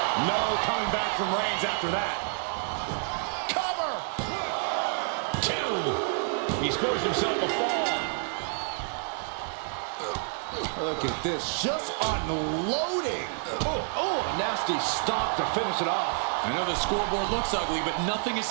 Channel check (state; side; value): silent; left; 58 dB below the other